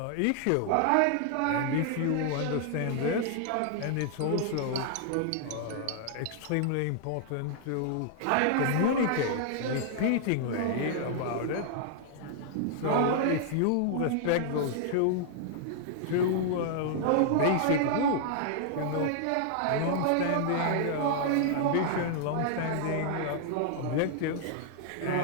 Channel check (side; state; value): both; different; correlation -0.01